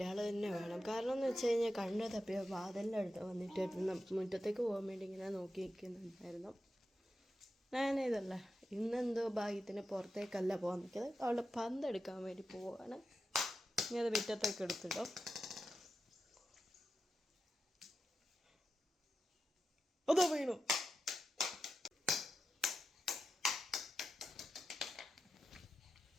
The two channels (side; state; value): both; normal; correlation 0.89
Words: തന്നെ വേണം. കാരണം എന്ന് വെച്ച് കഴിഞ്ഞാൽ കണ്ണ് തപ്പിയ വാതിലിൻ്റെ അടുത്ത് വന്നിട്ടായിരുന്നു മുറ്റത്തേക്ക് പോകാൻ വേണ്ടി ഇങ്ങനെ നോക്കി നിൽക്കുന്നുണ്ടായിരുന്നു. ഞാനിതല്ല ഇന്നെന്തോ ഭാഗ്യത്തിന് പുറത്തേക്കല്ല പോകാൻ നിൽക്കുന്നത്. അവളുടെ പന്തെടുക്കാൻ വേണ്ടി പോവാണ്. ഇനി അത് മുറ്റത്തേക്ക് എടുത്തിടും. അതോ വീണു.